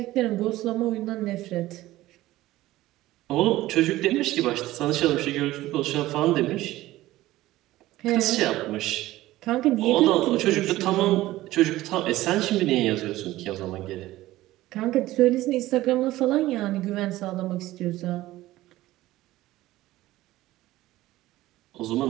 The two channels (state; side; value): quieter; left; 16.5 dB